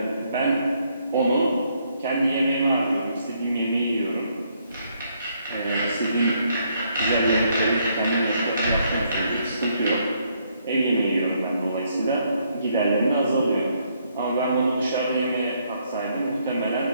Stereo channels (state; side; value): inverted; both; correlation -0.72